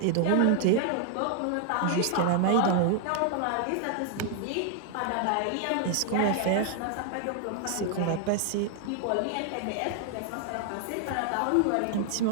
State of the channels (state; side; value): different; both; correlation 0.00